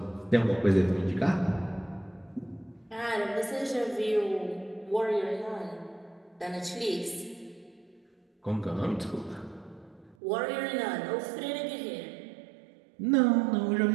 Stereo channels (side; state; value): left; drops out; at 10.2 s